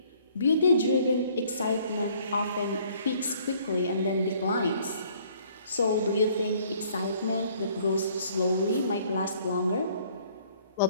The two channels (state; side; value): inverted; both; correlation -0.60